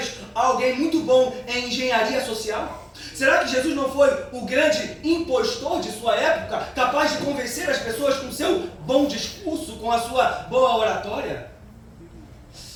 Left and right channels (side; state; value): both; identical; correlation 1.00